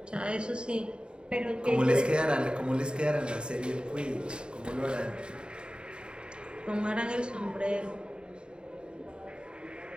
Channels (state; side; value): late; left; 0.051 ms